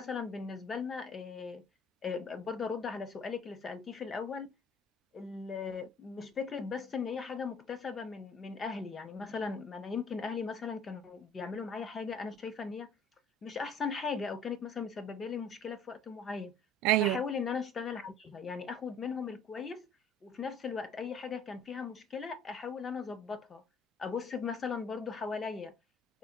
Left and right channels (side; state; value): both; normal; correlation 0.52